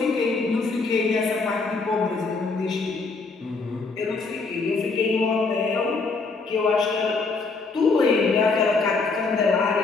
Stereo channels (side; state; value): right; quieter; 4.1 dB